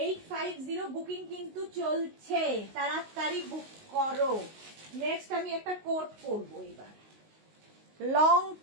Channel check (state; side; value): late; left; 19 ms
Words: 850 বুকিং কিন্তু চলছে, তাড়াতাড়ি বুক করো। নেক্সট আমি একটা কোট পরবো এবার, লং